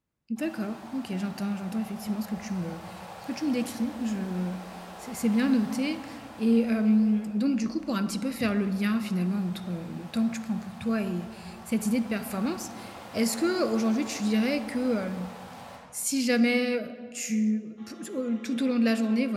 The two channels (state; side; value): identical; both; correlation 1.00